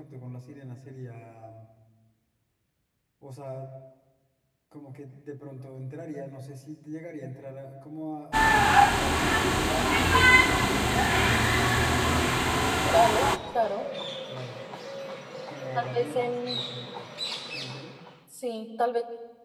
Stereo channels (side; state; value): both; identical; correlation 1.00